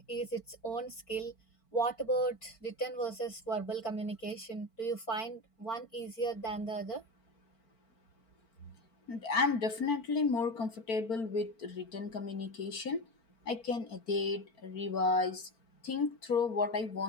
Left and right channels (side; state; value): right; late; 4.5 ms